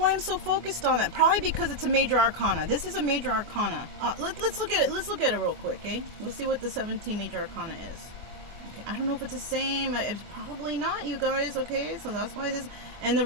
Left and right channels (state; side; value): late; left; 24 ms